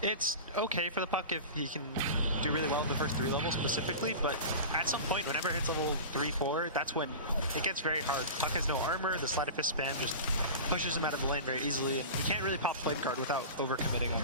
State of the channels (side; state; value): both; inverted; correlation -0.31